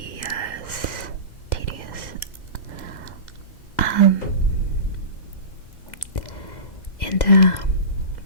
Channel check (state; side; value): late; right; 2.0 ms